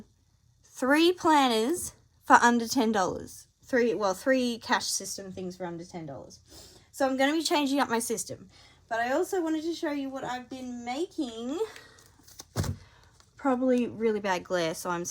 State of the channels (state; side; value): identical; both; correlation 1.00